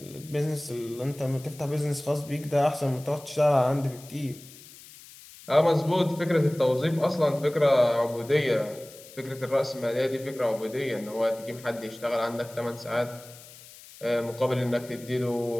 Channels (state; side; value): noise; left; hiss, 19 dB below the sound